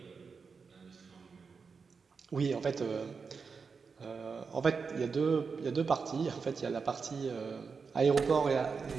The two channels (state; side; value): quieter; left; 5.3 dB